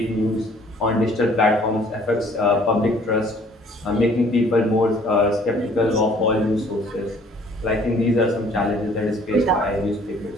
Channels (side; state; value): both; normal; correlation 0.57